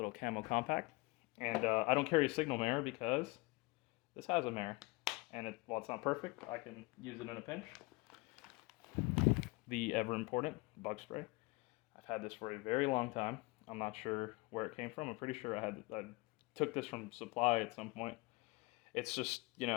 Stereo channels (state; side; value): quieter; right; 24.8 dB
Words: camo compact, and I don't carry a signal mirror because this has a mirror, and while it's not perfect, I can use it in a pinch. The ever important bug spray. I've had this for a very long time. I'm not sure where it came from. I'm pretty sure I took this from supply at some point. It's just, you